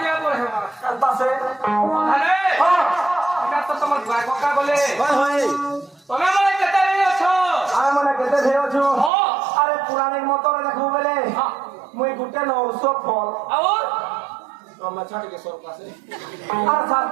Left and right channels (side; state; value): left; drops out; at 9.1 s